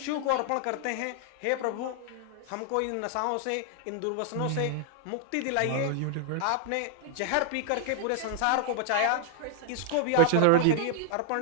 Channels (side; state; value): both; different; correlation 0.00